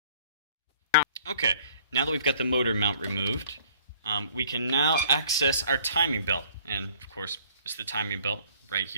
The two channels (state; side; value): inverted; both; correlation -0.56